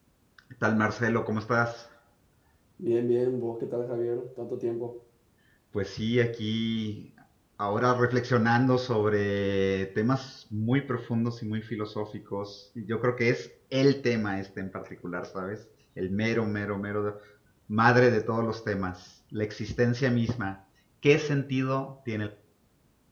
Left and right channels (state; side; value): identical; both; correlation 1.00